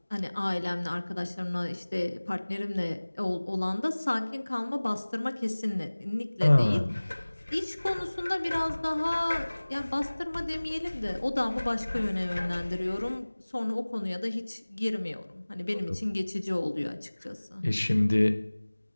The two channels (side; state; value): both; inverted; correlation -1.00